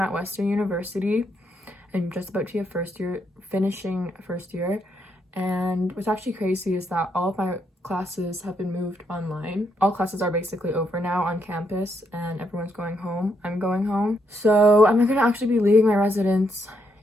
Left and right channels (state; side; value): normal; both; correlation 0.77